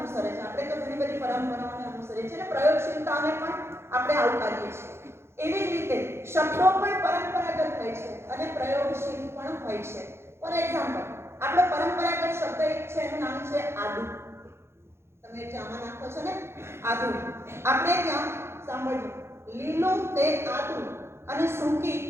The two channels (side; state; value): left; late; 0.12 ms